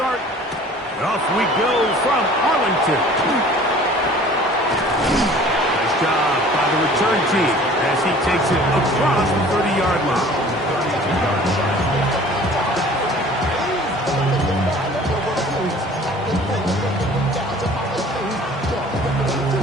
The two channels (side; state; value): both; normal; correlation 0.48